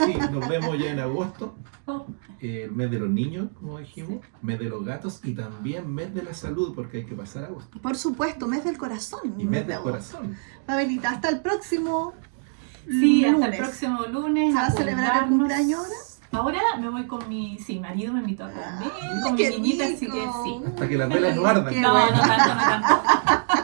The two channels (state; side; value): silent; left; digital silence